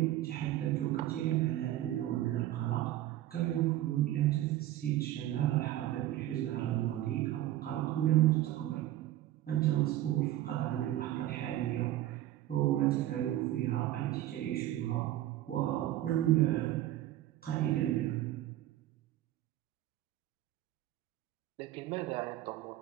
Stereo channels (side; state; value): left; quieter; 13.9 dB